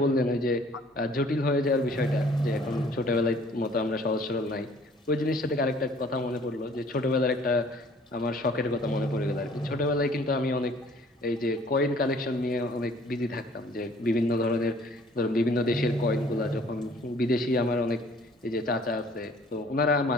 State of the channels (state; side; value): normal; both; correlation 0.55